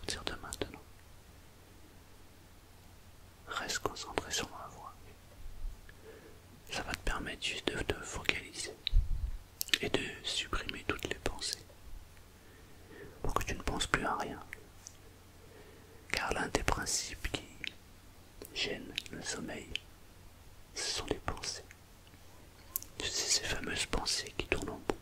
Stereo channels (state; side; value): identical; both; correlation 1.00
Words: de maintenant. Reste concentré sur ma voix. Ça va te permettre juste de te focaliser et de supprimer toutes les pensées pour que tu ne penses plus à rien. Car l'un des principes qui gêne le sommeil, ce sont les pensées. Tu sais, ces fameuses pensées qui tournent en